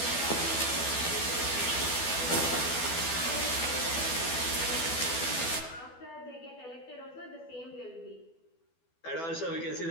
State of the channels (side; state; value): right; late; 12 ms